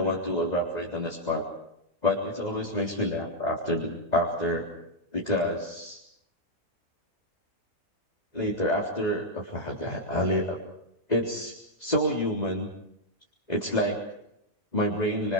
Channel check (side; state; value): both; normal; correlation -0.03